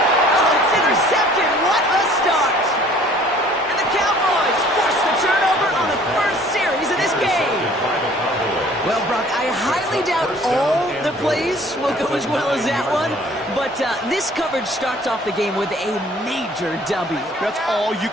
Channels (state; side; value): normal; both; correlation 0.54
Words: Oh, it's intercepted. What a start. And the Cowboys force the turnover on the first series of this game. Well, Brock, I highly doubt all the plays will go as well as that one, but this coverage starts off the game with a major W. That's all you